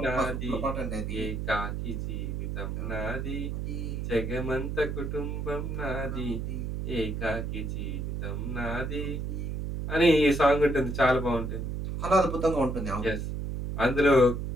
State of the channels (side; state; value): right; noise; hum, 3 dB below the sound